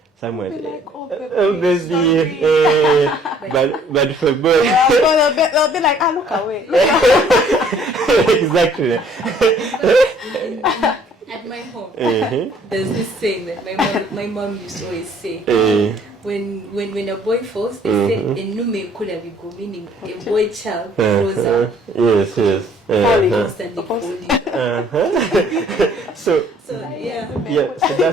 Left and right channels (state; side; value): normal; both; correlation 0.58